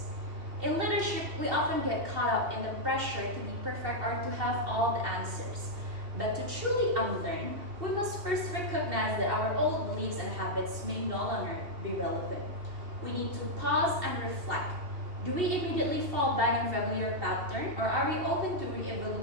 In leadership, we often get caught up in the pressure to be perfect or to have all the answers. But to truly unlearn, we must first recognize that our old beliefs and habits may no longer be relevant. We need to pause and reflect. Do we immediately fall back in familiar pattern, or are we open to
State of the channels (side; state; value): left; late; 2.7 ms